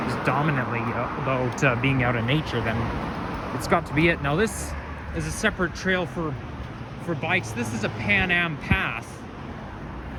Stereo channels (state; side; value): identical; both; correlation 1.00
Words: dominantly about being out in nature, then it's got to be it. Now this is a separate trail for bikes. This is a Pan Am path.